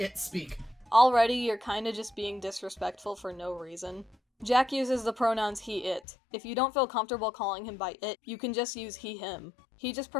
it speak. Already, you're kinda just being disrespectful for no reason. Jack uses the pronouns he, it. If you don't feel comfortable calling him by it, you can just use he, him. He just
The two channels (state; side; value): drops out; right; at 6.0 s